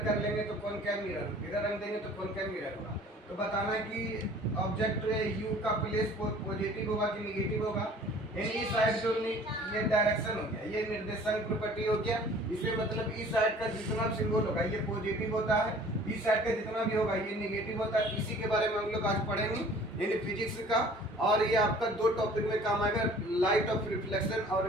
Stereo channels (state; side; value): normal; both; correlation 0.50